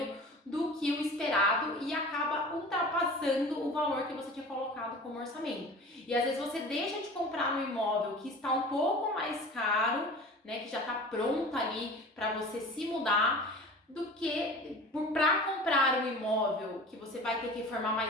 do que o esperado e acaba ultrapassando o valor que você tinha colocado como orçamento. E às vezes você deixa de comprar um imóvel que está um pouco mais caro, né, que já está pronta ali para você se mudar, do que para comprar um imóvel que você vai ter que reformar,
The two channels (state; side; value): normal; both; correlation 0.39